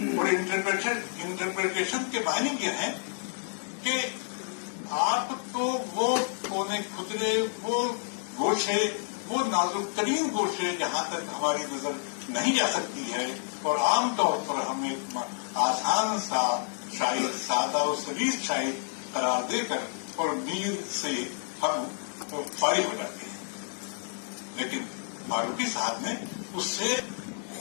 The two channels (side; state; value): right; silent; digital silence